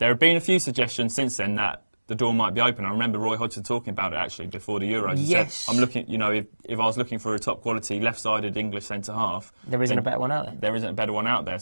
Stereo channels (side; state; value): both; inverted; correlation -1.00